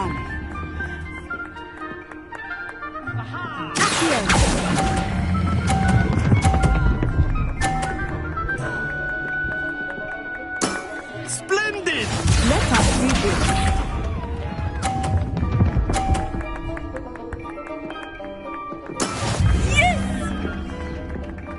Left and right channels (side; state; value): both; identical; correlation 1.00